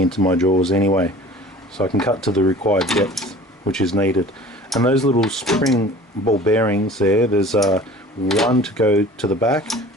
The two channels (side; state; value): both; normal; correlation 0.44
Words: my jaws anyway. So I can cut to the required depth which is needed. And those little spring ball bearings there, there's one to go to the back